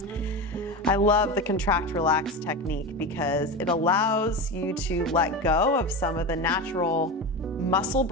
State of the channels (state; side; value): normal; both; correlation 0.22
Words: I love the contract relax technique because it allows you to let go of some of the natural muscle